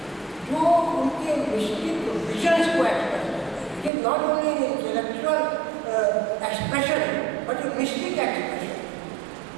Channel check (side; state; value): left; drops out; at 3.9 s